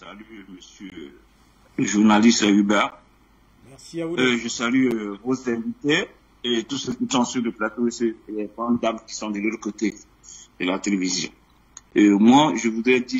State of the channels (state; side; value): identical; both; correlation 1.00